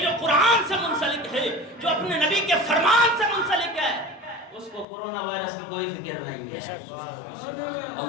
قرآن سے منسلک ہے، جو اپنے نبی کے فرمان سے منسلک ہے، اس کو کورونا وائرس کی کوئی فکر نہیں ہے۔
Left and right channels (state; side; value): drops out; right; at 4.9 s